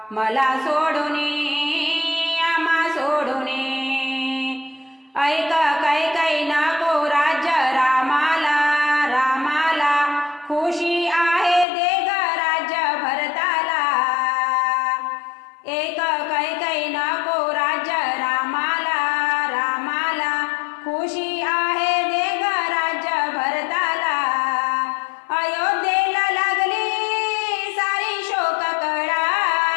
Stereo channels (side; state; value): right; drops out; at 11.7 s